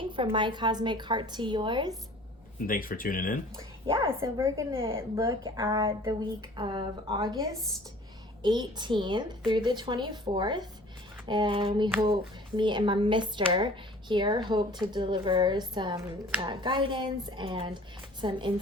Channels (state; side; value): normal; both; correlation 0.48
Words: from my cosmic heart to yours. And thanks for tuning in. Yeah, so we're going to look at the week of August 18th through the 24th. And we hope, me and my mister here, hope to deliver some guidance and some